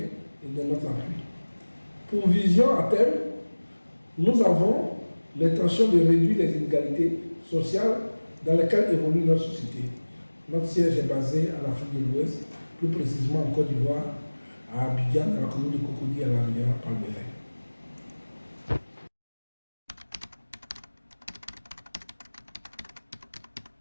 et de notre appui. Pour vision à terme, nous avons l'intention de réduire les inégalités sociales dans lesquelles évolue notre société. Notre siège est basé en Afrique de l'Ouest, plus précisément en Côte d'Ivoire, à Abidjan, dans la commune de Cocody, à la rivière Palmeraie.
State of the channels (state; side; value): inverted; both; correlation -1.00